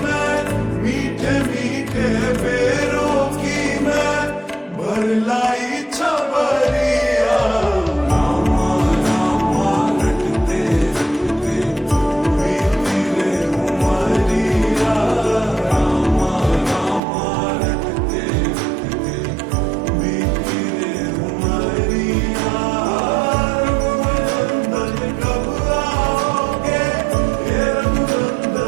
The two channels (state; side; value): drops out; left; at 17.0 s